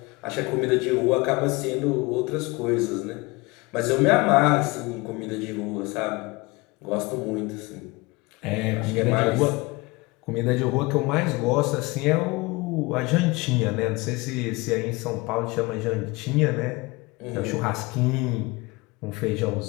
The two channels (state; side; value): quieter; right; 24.2 dB